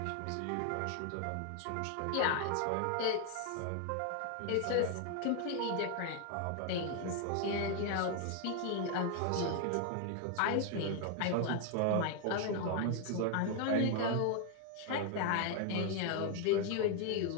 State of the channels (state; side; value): different; both; correlation 0.00